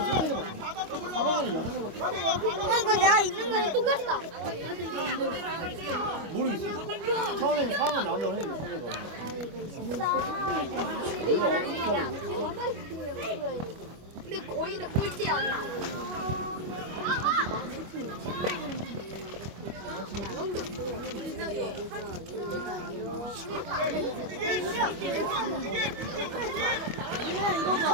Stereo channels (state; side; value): late; left; 25 ms